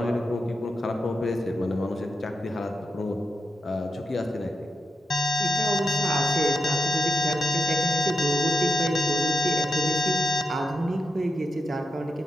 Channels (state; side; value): normal; both; correlation 0.87